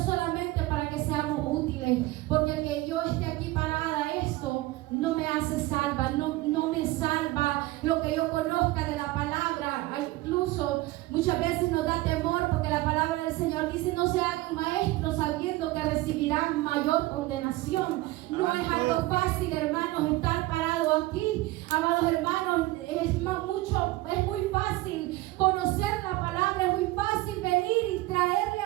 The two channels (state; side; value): quieter; left; 19.0 dB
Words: para que seamos útiles, porque el que yo esté aquí parada, esto no me hace salva, no me salva lo que yo conozca de la palabra. Incluso muchas veces nos da temor porque la palabra del Señor dice: no se hagan maestros sabiendo que recibirán mayor condenación. No es algo fácil, hermanos, estar parado aquí, amados hermanos. Es muy fácil conocer la palabra, es muy fácil venir y traerle